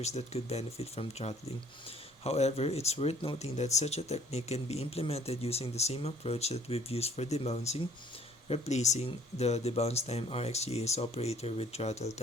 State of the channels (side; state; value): both; normal; correlation 0.57